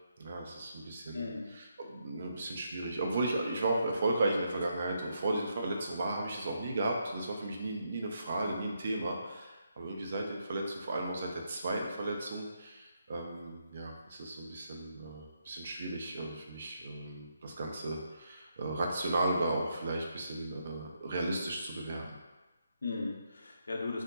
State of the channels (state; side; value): inverted; both; correlation -0.79